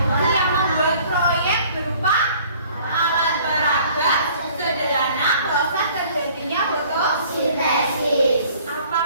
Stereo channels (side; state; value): both; inverted; correlation -0.54